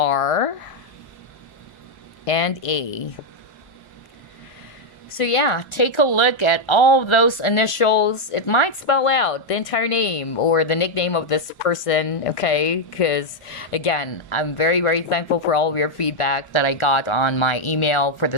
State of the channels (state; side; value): late; right; 1.3 ms